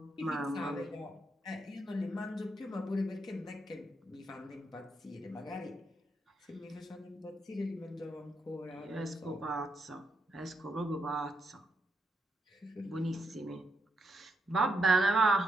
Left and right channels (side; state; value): both; normal; correlation 0.81